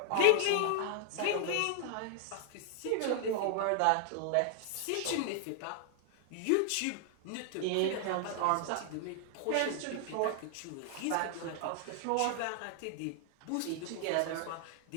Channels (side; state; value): both; different; correlation 0.00